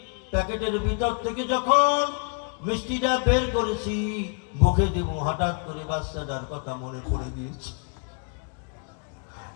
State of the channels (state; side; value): quieter; right; 39.0 dB